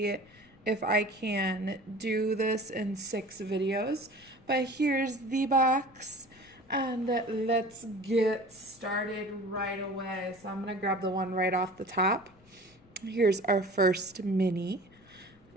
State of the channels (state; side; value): noise; left; rumble, 28 dB below the sound